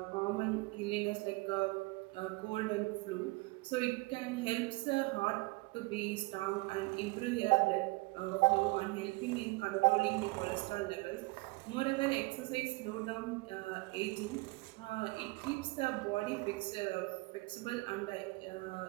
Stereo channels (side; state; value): left; quieter; 24.4 dB